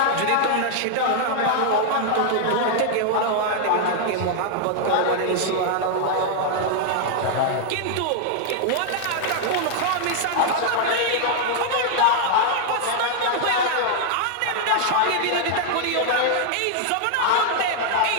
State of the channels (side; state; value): both; different; correlation 0.00